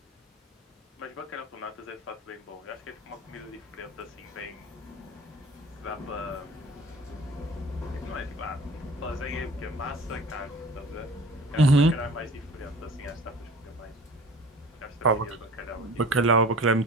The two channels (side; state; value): both; normal; correlation 0.43